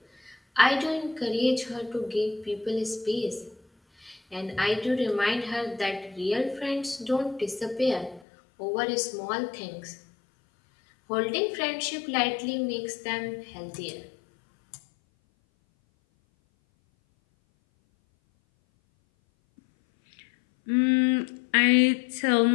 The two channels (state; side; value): drops out; right; at 8.2 s